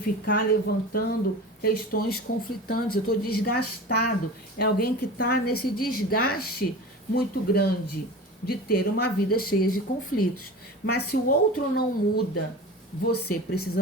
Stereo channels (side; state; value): both; normal; correlation 0.34